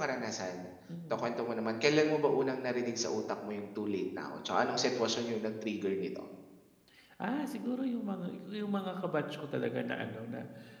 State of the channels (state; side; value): identical; both; correlation 1.00